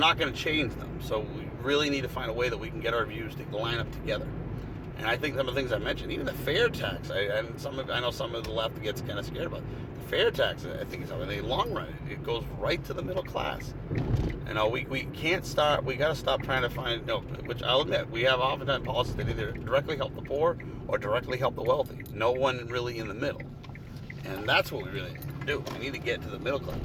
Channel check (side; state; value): both; identical; correlation 1.00